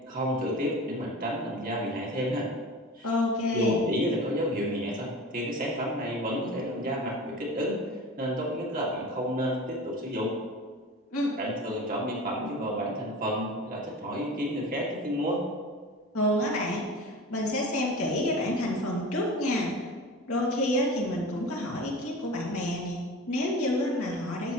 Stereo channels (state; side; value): normal; both; correlation 0.35